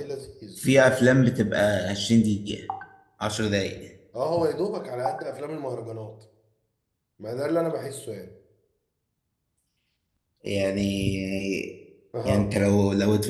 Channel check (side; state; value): both; identical; correlation 1.00